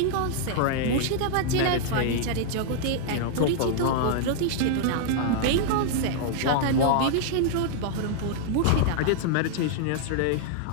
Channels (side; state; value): both; different; correlation -0.01